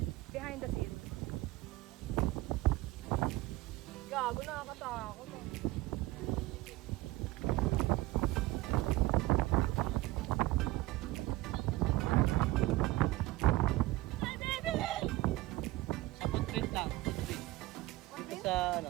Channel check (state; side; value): quieter; left; 18.5 dB